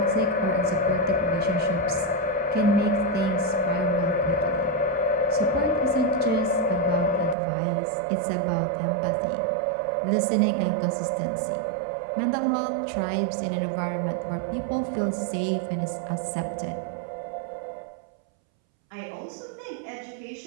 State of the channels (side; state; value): left; drops out; at 7.4 s